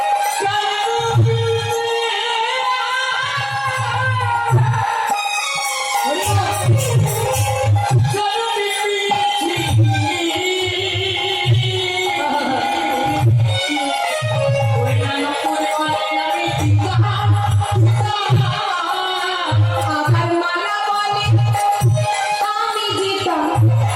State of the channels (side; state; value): both; identical; correlation 1.00